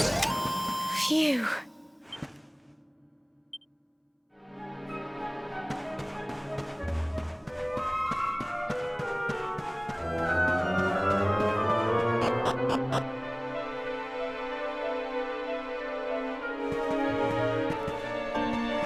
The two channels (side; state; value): both; identical; correlation 1.00